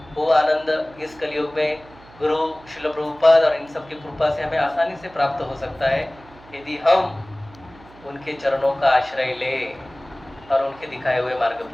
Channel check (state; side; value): noise; right; hum, 23 dB below the sound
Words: वो आनंद इस कलयुग में गुरु श्रील प्रभुपाद और इन सब की कृपा से हमें आसानी से प्राप्त हो सकता है, यदि हम उनके चरणों का आश्रय ले और उनके दिखाए हुए मार्ग